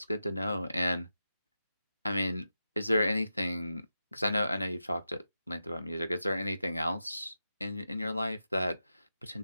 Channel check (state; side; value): inverted; both; correlation -0.91